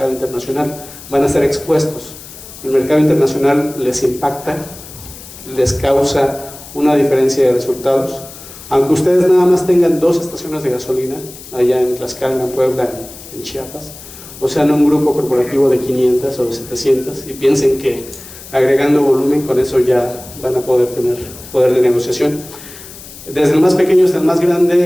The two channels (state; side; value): noise; left; hiss, 16 dB below the sound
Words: internacional. Van a ser expuestos. El mercado internacional les impacta, les causa una diferencia de resultados. Aunque ustedes nada más tengan 2 estaciones de gasolina, allá en Tlaxcala, en Puebla, en Chiapas, o sea, en un grupo corporativo de 500 o de 700, y piensen que agregando volumen con eso ya van a poder tener poder de negociación. Desde el más pequeño hasta el más